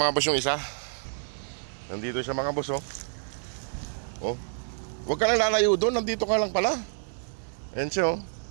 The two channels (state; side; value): silent; left; digital silence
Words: boss, yung isa. Nandito siya, mga boss, oh. Oh, huwag ka lang lalayo doon, nandito ka lang pala. Ayan siya, oh.